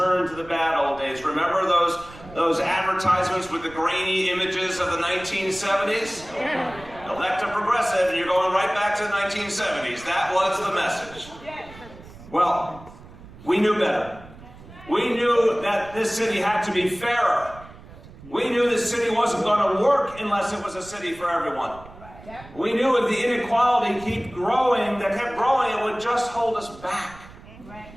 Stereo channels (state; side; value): noise; right; rumble, 19 dB below the sound